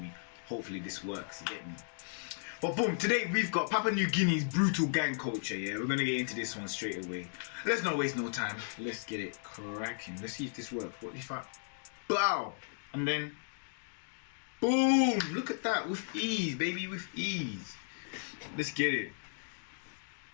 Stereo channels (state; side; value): silent; right; digital silence